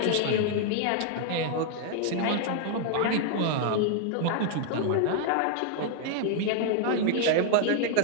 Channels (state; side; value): different; both; correlation 0.00